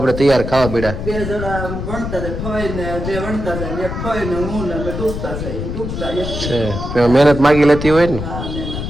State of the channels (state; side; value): noise; left; rumble, 5 dB below the sound